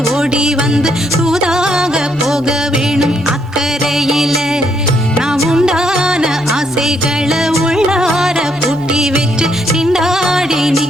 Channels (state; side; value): normal; both; correlation 0.73